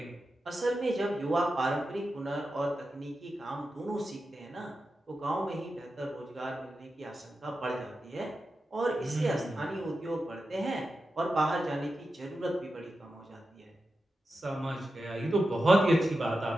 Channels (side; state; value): both; normal; correlation 0.91